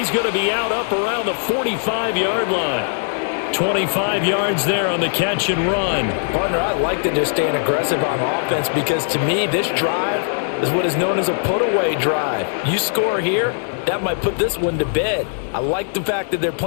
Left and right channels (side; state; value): right; silent; 66 dB below the other